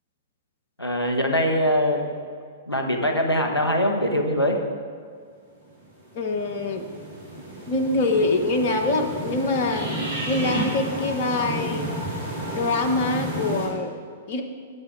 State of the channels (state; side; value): inverted; both; correlation -0.31